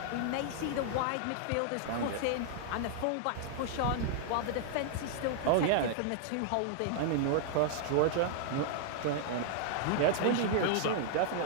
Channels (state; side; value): different; both; correlation -0.01